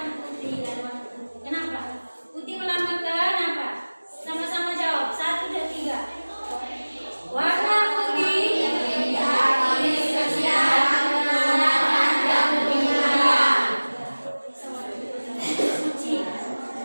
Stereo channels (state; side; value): inverted; both; correlation -1.00